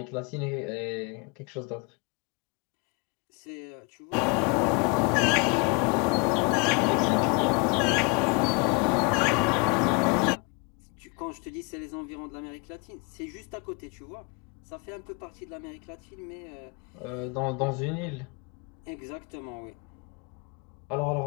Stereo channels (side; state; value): right; quieter; 32.1 dB